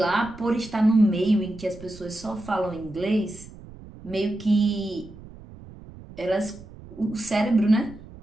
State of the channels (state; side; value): noise; right; rumble, 18 dB below the sound